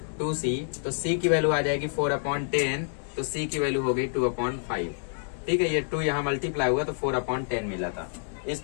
2c, तो c की वैल्यू आ जाएगी 4/10, तो c की वैल्यू हो गई 2/5, ठीक है, ये 2 यहाँ मल्टीप्लाई हुआ तो 4/10 मिला था।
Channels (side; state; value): right; silent; digital silence